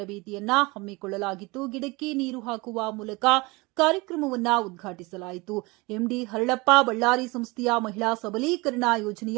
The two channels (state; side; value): quieter; left; 24.5 dB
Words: ಹಮ್ಮಿಕೊಳ್ಳಲಾಗಿತ್ತು. ಗಿಡಕ್ಕೆ ನೀರು ಹಾಕುವ ಮೂಲಕ ಕಾರ್ಯಕ್ರಮವನ್ನ ಉದ್ಘಾಟಿಸಲಾಯಿತು. ಎಂಡಿ ಹರಳಪ್ಪ ಬಳ್ಳಾರಿ ಸಂಸ್ಥೆಯ ಮಹಿಳಾ ಸಬಲೀಕರಣ